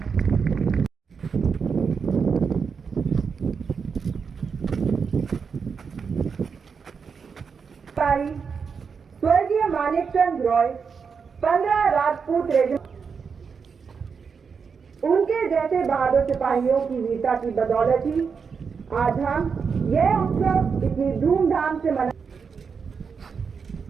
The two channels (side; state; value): left; quieter; 5.8 dB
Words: स्वर्गीय मानिकचंद रॉय 15 राजपूत रेजिमेंट, उनके जैसे बहादुर सिपाहियों की वीरता की बदौलत ही आज हम यह उत्सव इतनी धूमधाम से मना।